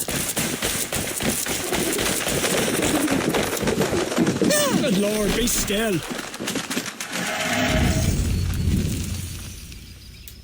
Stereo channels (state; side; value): identical; both; correlation 1.00